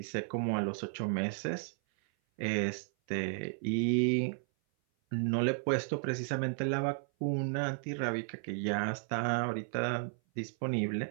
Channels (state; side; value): silent; left; 55 dB below the other